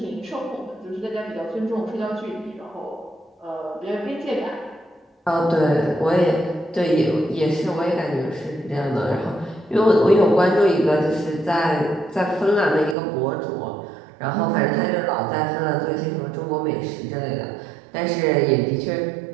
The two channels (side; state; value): left; drops out; at 13.0 s